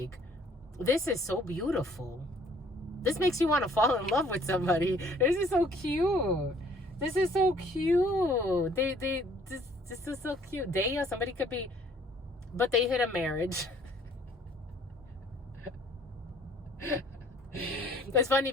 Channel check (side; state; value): both; normal; correlation 0.58